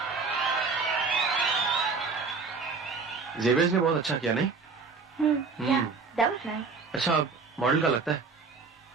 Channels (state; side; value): quieter; left; 4.6 dB